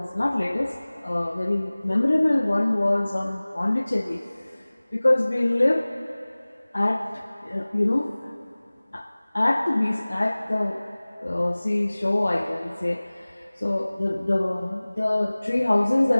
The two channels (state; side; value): inverted; both; correlation -1.00